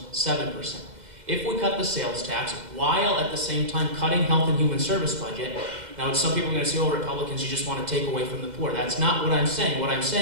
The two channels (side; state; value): left; late; 2.0 ms